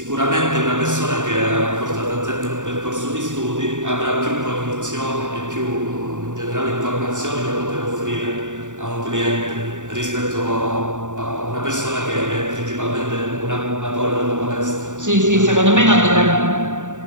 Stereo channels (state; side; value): late; left; 0.86 ms